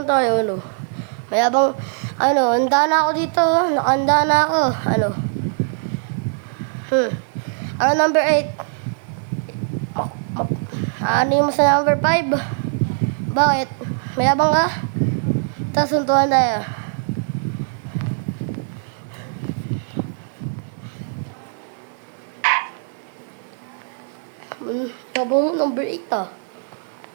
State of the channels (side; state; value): left; silent; digital silence